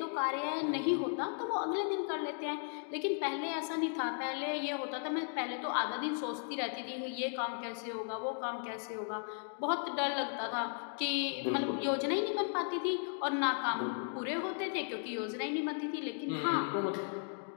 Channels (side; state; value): right; silent; 54 dB below the other